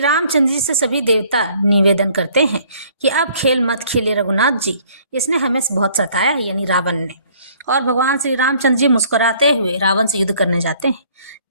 रामचंद्र जी से सभी देवता निवेदन करते हैं कि अब खेल मत खेलिए रघुनाथ जी, इसने हमें बहुत सताया है, यानी रावण ने। और भगवान श्री रामचंद्र जी मुस्कुराते हुए रावण से युद्ध करने जाते हैं।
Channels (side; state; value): both; inverted; correlation -0.59